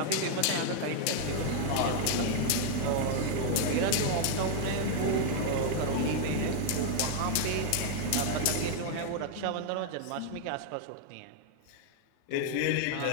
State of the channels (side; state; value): both; different; correlation 0.00